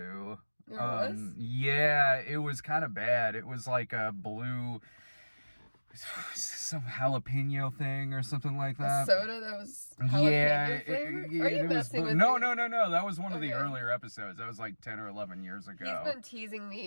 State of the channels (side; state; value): both; inverted; correlation -1.00